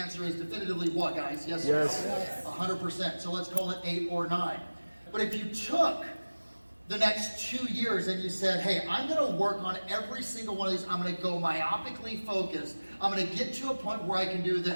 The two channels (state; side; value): inverted; both; correlation -1.00